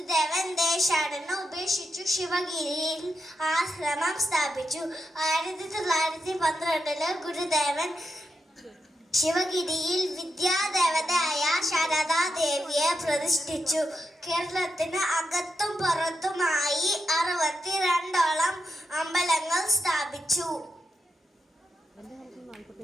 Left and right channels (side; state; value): both; normal; correlation 0.86